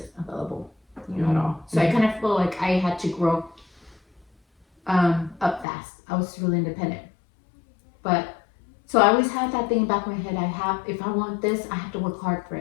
available, at all. So I kind of feel like I had to grow up fast. I was really independent, but so I always had that thing back in my head. If I want this, I have to work hard for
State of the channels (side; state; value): right; drops out; at 5.7 s